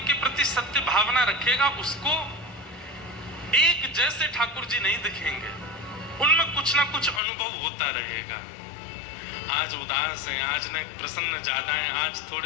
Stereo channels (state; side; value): drops out; right; at 7.2 s